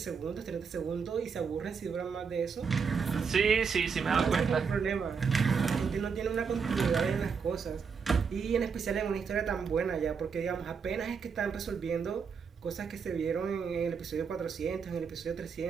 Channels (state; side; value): quieter; left; 5.9 dB